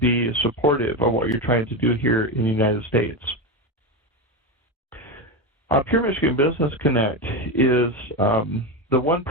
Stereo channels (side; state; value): both; normal; correlation 0.15